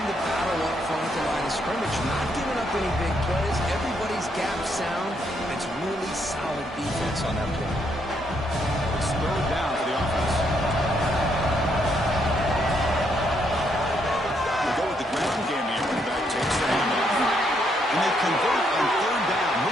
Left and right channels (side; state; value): both; normal; correlation 0.74